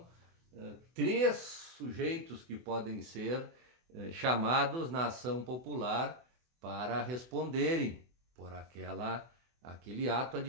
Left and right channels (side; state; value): left; late; 24 ms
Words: 3 sujeitos que podem ser chamados na ação popular para responderem por aquele ato